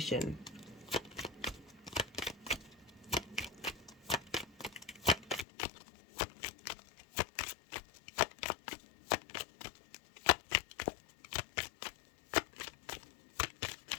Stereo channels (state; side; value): drops out; right; at 5.5 s